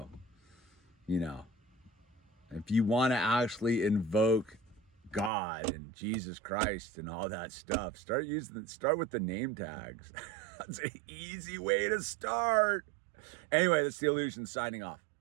you know, if you want to actually invoke God and Jesus Christ and all that stuff, start with the name tags. That's an easy way to start. Anyway, that's the Illusion signing off.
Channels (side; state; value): left; drops out; at 5.3 s